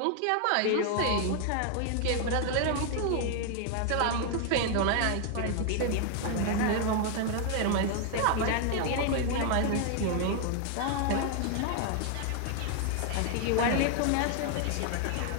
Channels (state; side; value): different; both; correlation 0.00